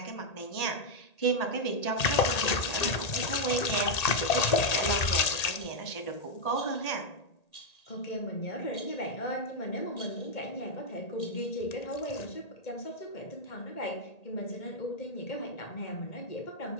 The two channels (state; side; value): late; right; 1.8 ms